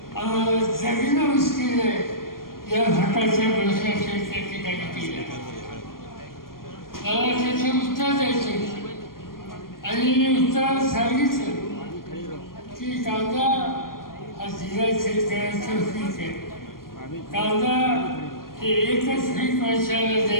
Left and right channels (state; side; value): late; right; 0.91 ms